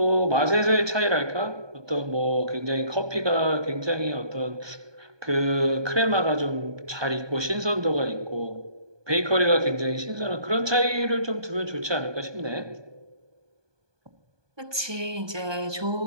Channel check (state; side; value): late; left; 1.2 ms